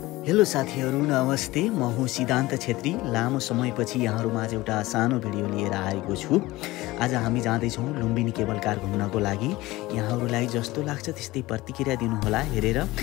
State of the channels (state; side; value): quieter; right; 19.0 dB